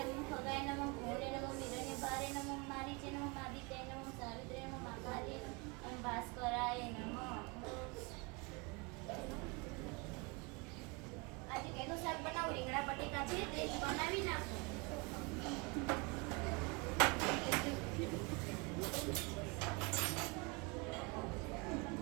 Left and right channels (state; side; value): quieter; left; 28.4 dB